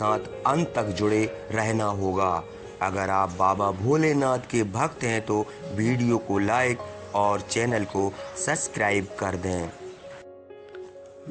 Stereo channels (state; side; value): identical; both; correlation 1.00